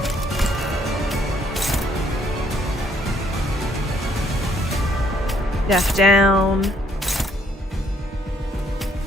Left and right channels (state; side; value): normal; both; correlation 0.67